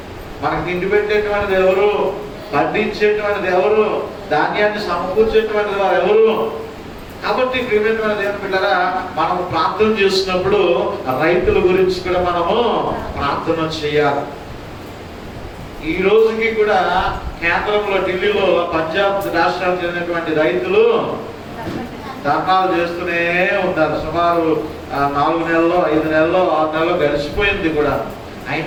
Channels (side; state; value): both; identical; correlation 1.00